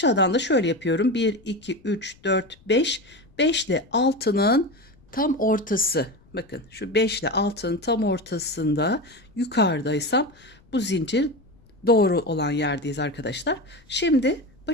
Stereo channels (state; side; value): noise; left; rumble, 29 dB below the sound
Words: da şöyle yapıyorum. 1, 2, 3, 4, 5. 5 ile 6'nın tam ortası. Bakın şu 5 ile 6'nın tam ortasında yukarıdaysam bu zincir doğru olan yerdeyiz arkadaşlar. Şimdi